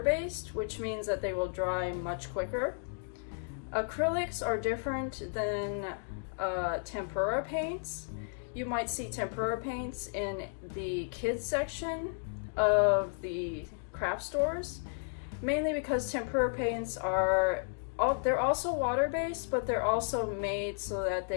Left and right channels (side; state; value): right; silent; digital silence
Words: based, which means that they will dry much quicker. Acrylics are different than tempera paints. You might see tempera paints in the kids section of the craft stores, mainly because tempera paints they're also water-based, but they're also made so that